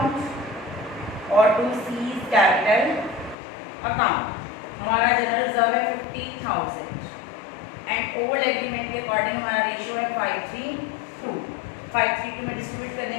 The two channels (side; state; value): right; drops out; at 3.4 s